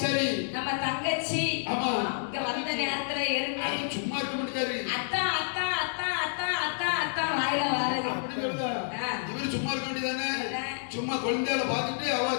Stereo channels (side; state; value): right; silent; 58 dB below the other